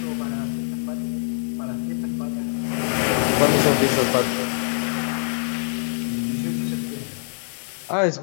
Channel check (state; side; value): silent; right; digital silence